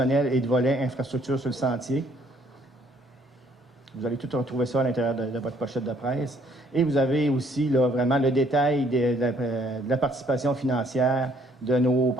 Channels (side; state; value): both; normal; correlation 0.64